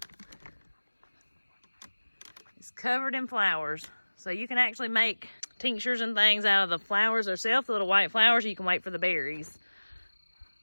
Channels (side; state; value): both; inverted; correlation -1.00